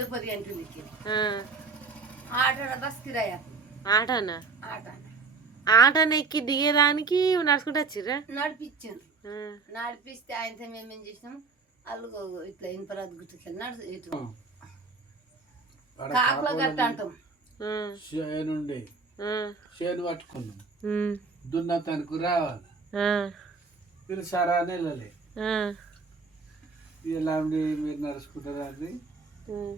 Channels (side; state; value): left; quieter; 4.5 dB